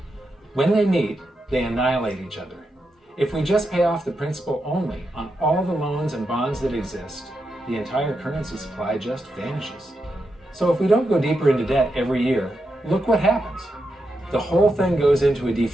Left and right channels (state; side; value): normal; both; correlation 0.86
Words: When they meet, they annihilate each other. If we just pay off the principal only on all the loans and bonds that exist, the entire currency supply just vanishes. So if we don't go deeper into debt every year, look what happens. The whole thing goes into a